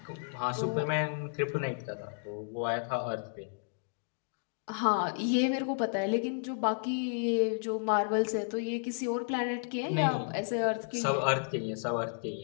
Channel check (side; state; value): right; silent; digital silence